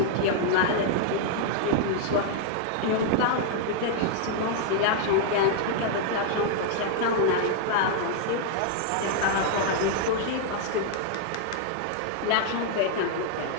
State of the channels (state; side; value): different; both; correlation -0.01